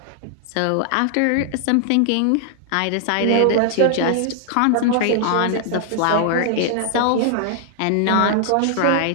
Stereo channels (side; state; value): both; different; correlation -0.01